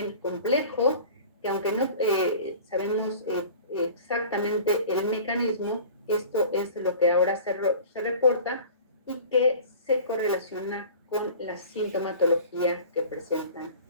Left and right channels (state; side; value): inverted; both; correlation -0.42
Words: complejo, que aunque no sabemos exactamente el mecanismo, esto es lo que ahora se reporta y que se correlaciona con la sintomatología que presentan